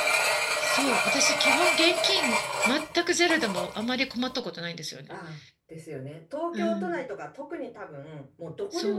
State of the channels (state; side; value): identical; both; correlation 1.00